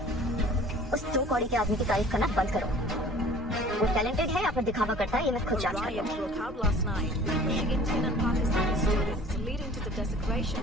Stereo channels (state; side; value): normal; both; correlation 0.48